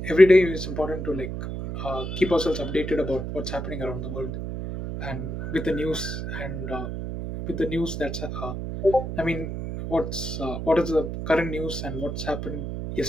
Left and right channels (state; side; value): noise; right; hum, 5 dB below the sound